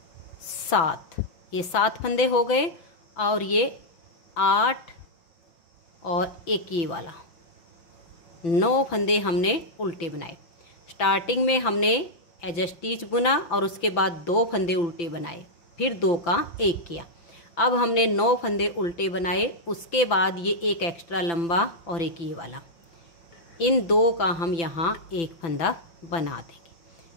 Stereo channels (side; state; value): right; late; 5.9 ms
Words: 7, ये 7 फंदे हो गए और ये 8 और एक ये वाला। 9 फंदे हमने उल्टे बनाए। स्टार्टिंग में हमने एज स्टिच बुना और उसके बाद 2 फंदे उल्टे बनाए, फिर 2 का 1 किया। अब हमने 9 फंदे उल्टे बनाए, उसके बाद ये एक एक्स्ट्रा लंबा और एक ये वाला। इन 2 का हम यहाँ एक फंदा बना देंगे।